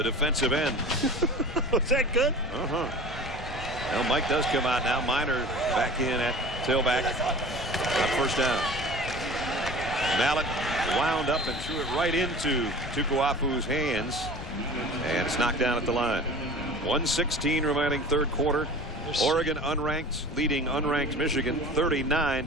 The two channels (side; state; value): left; noise; rumble, 9 dB below the sound